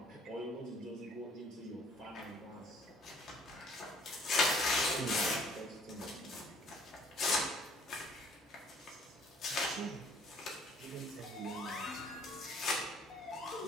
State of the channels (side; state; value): both; normal; correlation 0.58